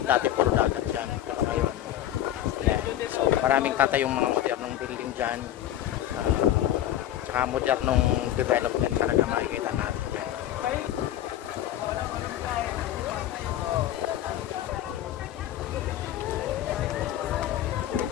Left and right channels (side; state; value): right; quieter; 12.3 dB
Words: Dati puro dagat diyan, pero ngayon yan. So maraming tatayong mga modernong building diyan. Tsaka modernong development talaga makikita natin diyan.